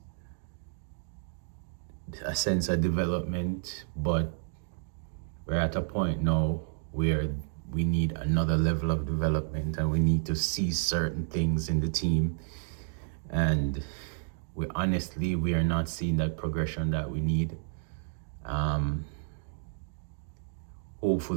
a sense of development, but we're at a point now where we need another level of development, and we need to see certain things in the team. And we are not seeing that progression that we need. Um,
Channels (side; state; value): left; silent; digital silence